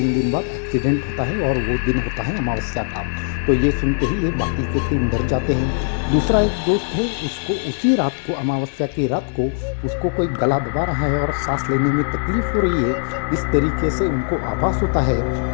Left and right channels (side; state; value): right; silent; digital silence